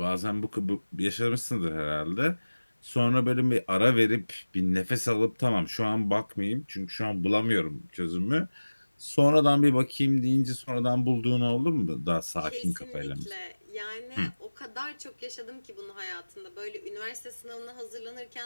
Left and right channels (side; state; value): both; inverted; correlation -1.00